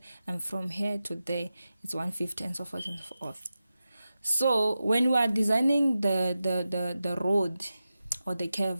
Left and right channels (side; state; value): both; inverted; correlation -0.92